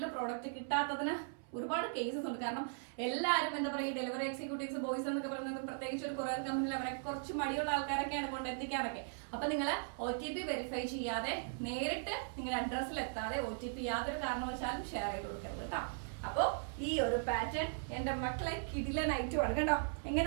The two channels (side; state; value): left; silent; 52 dB below the other